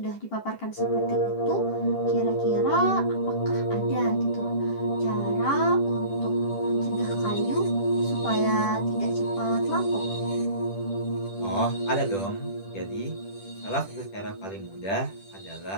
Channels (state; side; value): late; right; 10 ms